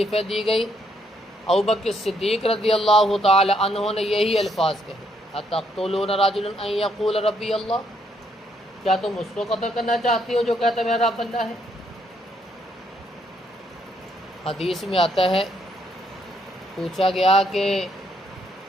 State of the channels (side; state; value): both; normal; correlation 0.73